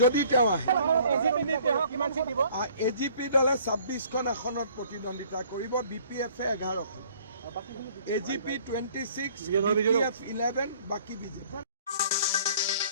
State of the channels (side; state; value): both; inverted; correlation -0.56